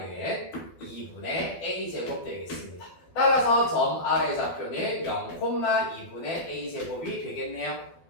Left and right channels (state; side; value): late; right; 12 ms